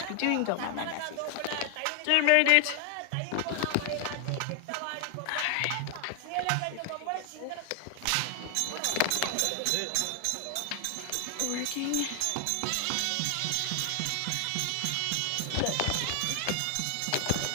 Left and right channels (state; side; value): different; both; correlation 0.00